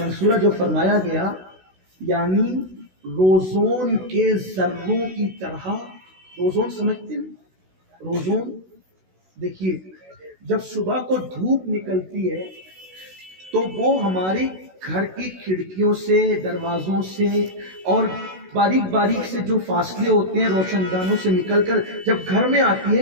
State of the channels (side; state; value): left; late; 16 ms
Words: جو فرمایا گیا یعنی روزون کے ذروں کی طرح. روزون سمجھتے ہیں؟ روزون دیکھیے جب صبح کو دھوپ نکلتی ہے تو وہ ہماری گھر کی کھڑکیوں سے، دروازوں سے اور باریک باریک سے جو فاصلے ہوتے ہیں روشن دانوں سے نکل کر جب گھر میں آتی